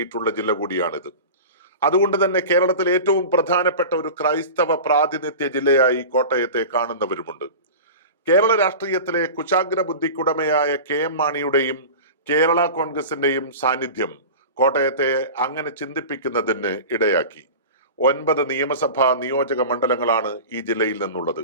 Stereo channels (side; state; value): both; inverted; correlation -0.33